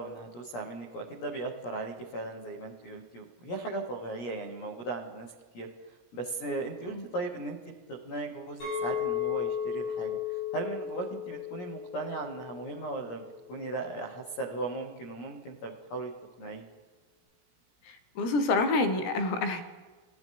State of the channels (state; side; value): late; right; 17 ms